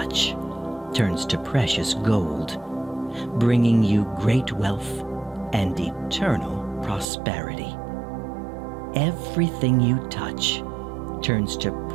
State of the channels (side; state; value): left; drops out; at 7.1 s